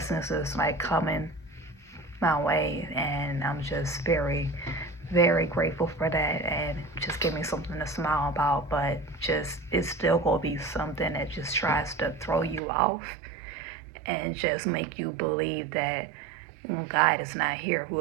is like coming my way, and I'm just very, very grateful for that, and just give me something to smile about. But just, it's still gonna be something that just tries to throw you off and just make you believe that God is not here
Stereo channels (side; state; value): left; drops out; at 12.6 s